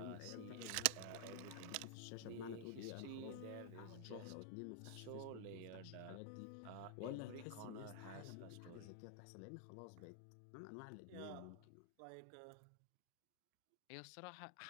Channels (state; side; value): different; both; correlation 0.00